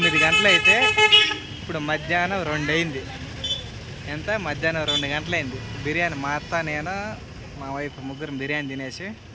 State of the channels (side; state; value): both; identical; correlation 1.00